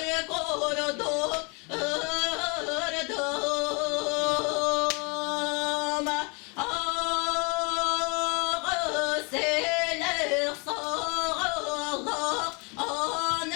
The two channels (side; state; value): right; quieter; 31.5 dB